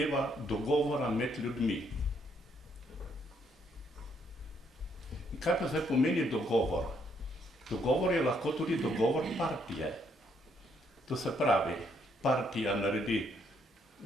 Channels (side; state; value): both; normal; correlation 0.71